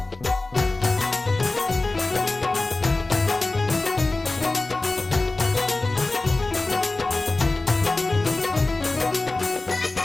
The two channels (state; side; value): quieter; right; 3.1 dB